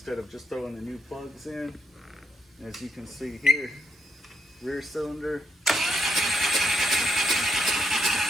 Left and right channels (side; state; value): both; normal; correlation 0.78